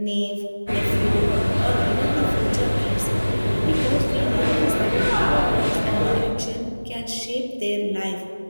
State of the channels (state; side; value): inverted; both; correlation -1.00